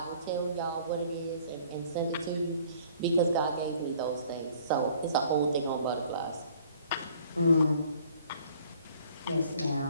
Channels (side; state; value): both; inverted; correlation -0.56